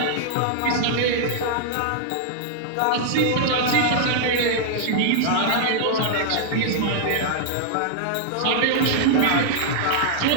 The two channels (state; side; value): different; both; correlation -0.01